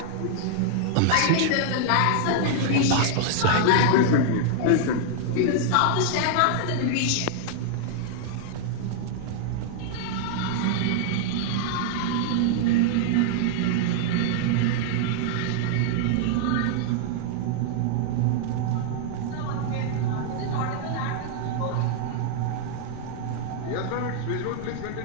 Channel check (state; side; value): different; both; correlation -0.01